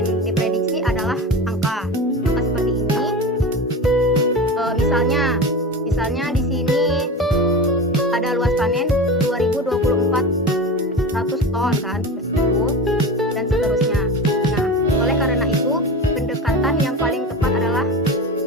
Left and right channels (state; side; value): normal; both; correlation 0.28